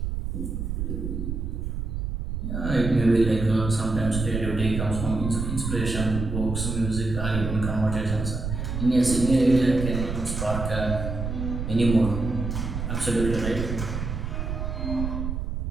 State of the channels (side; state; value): right; noise; rumble, 3 dB below the sound